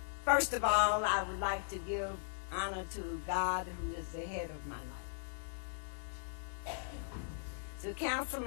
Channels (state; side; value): silent; right; digital silence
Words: First of all, I would like to give honor to God, who is the head of my life. To